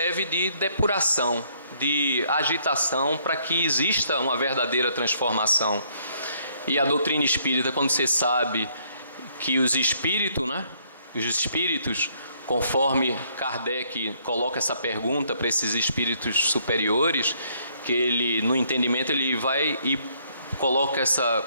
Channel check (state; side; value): inverted; both; correlation -0.68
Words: de depuração, de agitação para que exista uma verdadeira transformação. E a doutrina espírita, quando você sabe que os espíritos, né, os espíritos, conforme Kardec coloca essa pergunta para esses espíritos superiores, que ele, no entendimento, ele vai e coloca